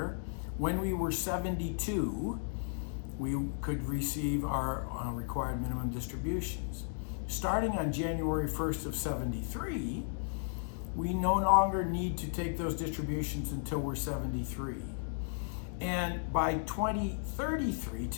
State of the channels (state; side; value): silent; right; digital silence